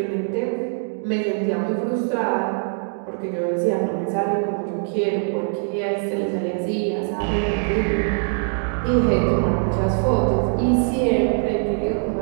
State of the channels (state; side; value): silent; left; 63 dB below the other